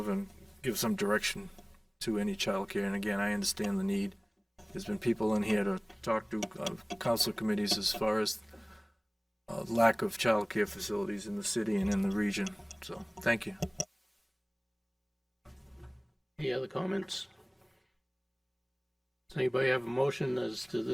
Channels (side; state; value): both; identical; correlation 1.00